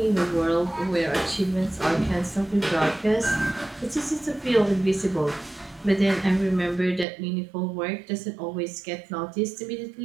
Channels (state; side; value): drops out; left; at 7.1 s